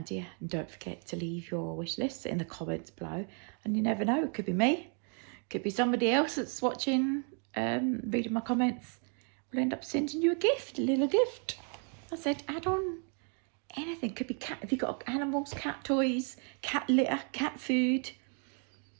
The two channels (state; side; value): quieter; left; 39.8 dB